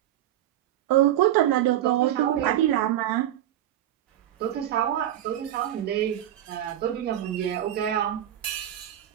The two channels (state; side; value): quieter; left; 12.2 dB